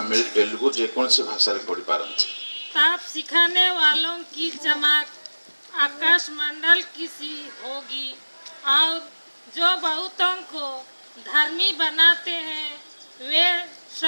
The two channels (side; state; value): both; inverted; correlation -1.00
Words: तेलुगु जेकोसी भाषा पढ़ी पारती। ताप सिखाने वालों की चमक आकाश मंडल की सी होगी, और जो बहुतों को धर्मी बनाते हैं वे